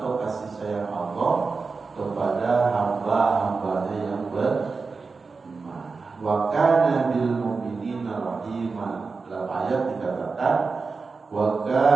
kasih sayang Allah kepada hamba-hambanya yang beriman. Wa kana bil mu'minina rahima. Dalam ayat dikatakan wa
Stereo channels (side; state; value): left; quieter; 4.4 dB